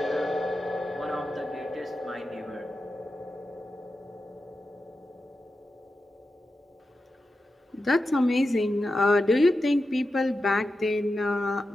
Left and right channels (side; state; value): both; normal; correlation 0.90